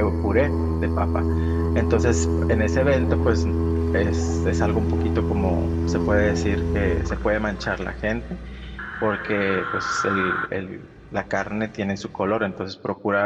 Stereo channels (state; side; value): identical; both; correlation 1.00